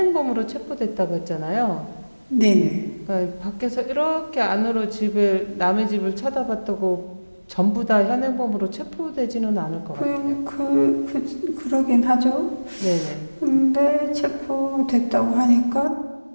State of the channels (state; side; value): inverted; both; correlation -1.00